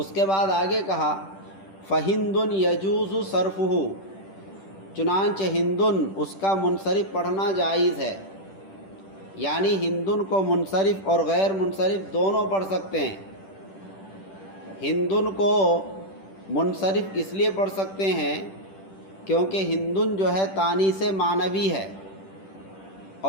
کے بعد آگے کہا فَهِنْدٌ يَجُوزُ صَرْفُهُ، چنانچہ ہندن اس کا منصرف پڑھنا جائز ہے، یعنی ہندن کو منصرف اور غیر منصرف دونوں پڑھ سکتے ہیں۔ ہندن کو منصرف اس لیے پڑھ سکتے ہیں کیونکہ ہندن جو ہے تانیث معنوی ہے،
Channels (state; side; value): late; right; 10 ms